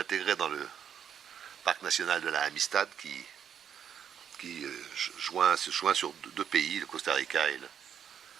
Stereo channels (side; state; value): left; quieter; 8.4 dB